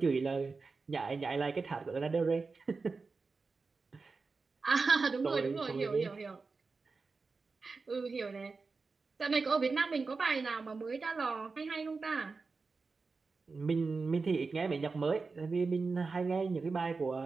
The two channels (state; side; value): quieter; left; 4.3 dB